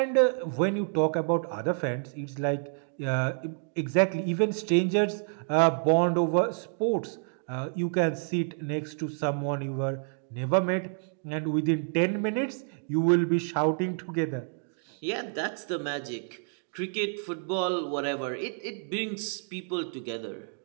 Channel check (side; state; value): left; silent; 55 dB below the other